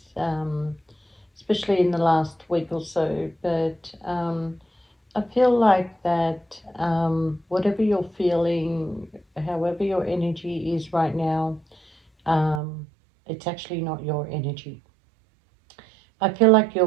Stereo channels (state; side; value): drops out; left; at 12.6 s